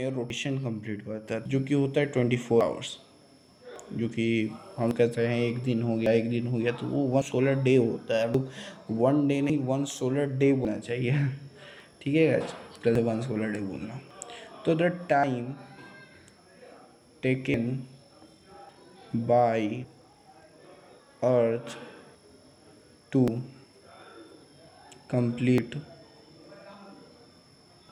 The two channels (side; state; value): both; identical; correlation 1.00